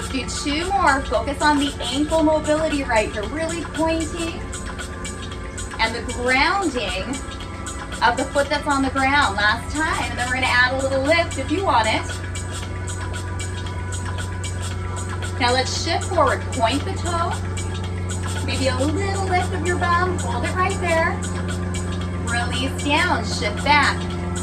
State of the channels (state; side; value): identical; both; correlation 1.00